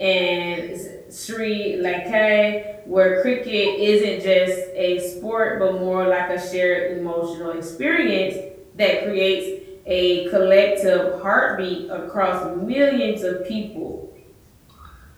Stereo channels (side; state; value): both; identical; correlation 1.00